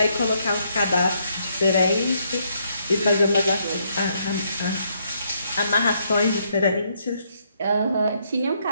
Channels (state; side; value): inverted; both; correlation -0.74